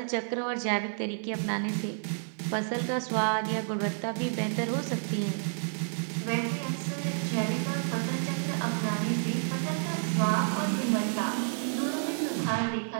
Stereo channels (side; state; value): left; silent; digital silence